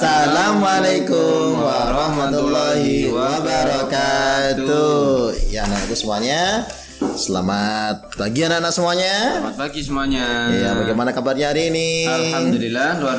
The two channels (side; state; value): both; identical; correlation 1.00